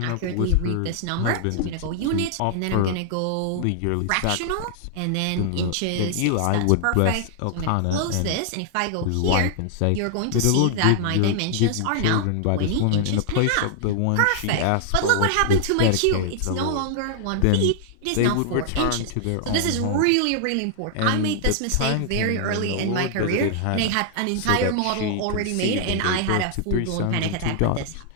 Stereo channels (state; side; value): different; both; correlation 0.00